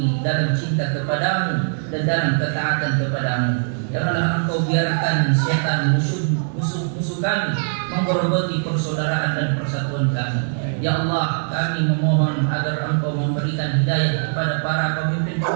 dalam cinta kepadamu dan dalam ketaatan kepadamu. Janganlah Engkau biarkan setan musuh kami menggerogoti persaudaraan dan persatuan kami. Ya Allah, kami memohon agar Engkau memberikan hidayah kepada para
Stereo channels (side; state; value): left; silent; digital silence